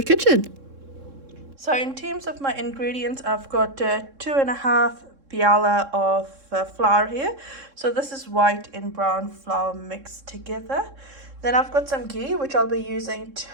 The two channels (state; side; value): late; left; 3.7 ms